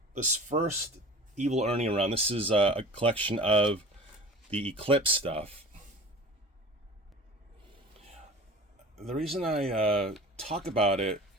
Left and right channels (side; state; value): both; normal; correlation 0.40